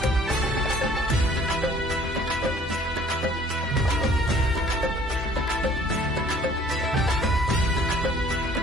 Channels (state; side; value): normal; both; correlation 0.55